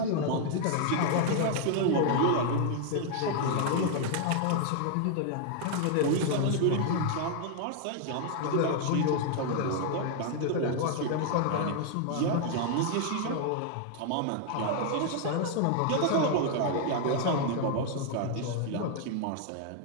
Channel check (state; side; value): different; both; correlation 0.00